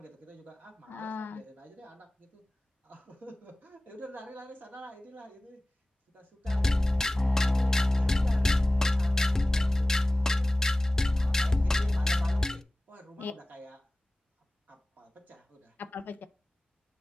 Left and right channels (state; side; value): normal; both; correlation 0.97